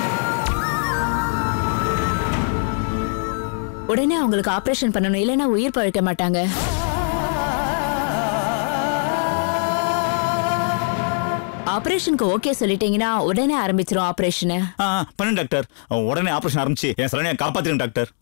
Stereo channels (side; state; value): right; silent; 56 dB below the other